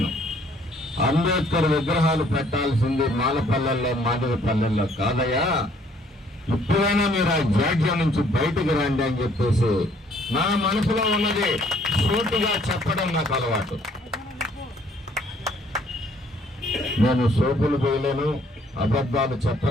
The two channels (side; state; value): both; normal; correlation 0.62